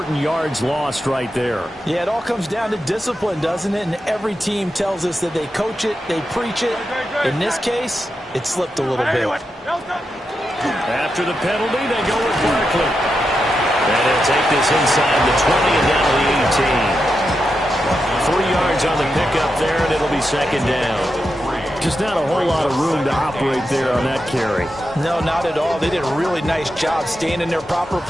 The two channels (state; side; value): normal; both; correlation 0.87